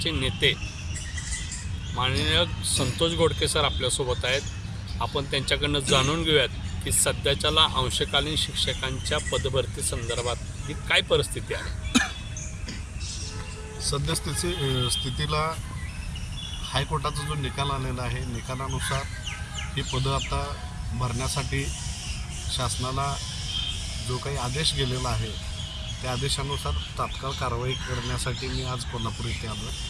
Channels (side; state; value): both; identical; correlation 1.00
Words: नेते माननीय संतोष गोडके सर आपल्यासोबत आहेत. आपण त्यांच्याकडनं जाणून घेऊयात की सध्याच्याला अंशकालीन शिक्षकांच्या पदभरती संदर्भात ही काय परिस्थिती आहे. स्थितीला हायकोर्टाचा जो निकाल आलेला आहे, निकालानुसार ही पदं आता भरण्यासाठी शासनाला जो काही आदेश गेलेला आहे त्या आदेशानुसार तात्काळ कारवाई करण्यासाठी मी आज कोल्हापूर इथे आलो